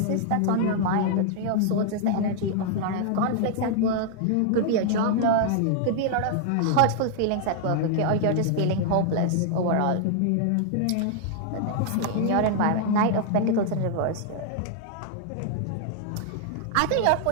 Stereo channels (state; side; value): different; both; correlation 0.00